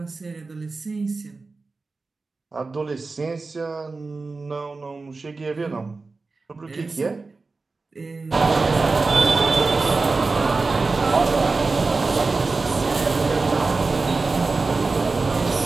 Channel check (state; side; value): quieter; left; 3.9 dB